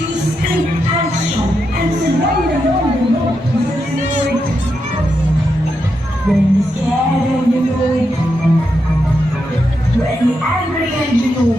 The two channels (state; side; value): normal; both; correlation 0.84